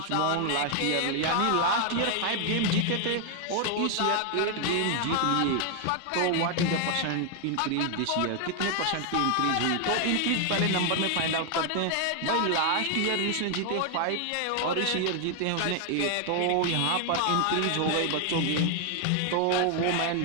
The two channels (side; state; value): both; different; correlation 0.00